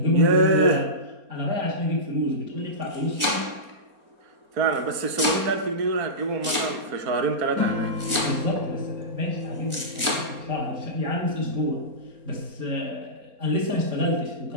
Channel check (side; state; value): left; late; 4.3 ms